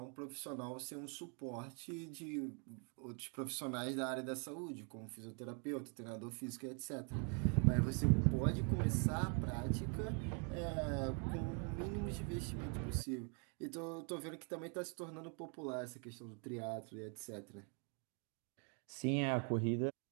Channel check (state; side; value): quieter; left; 38.9 dB